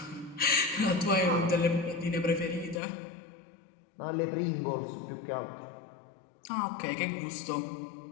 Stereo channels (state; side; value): drops out; right; at 2.8 s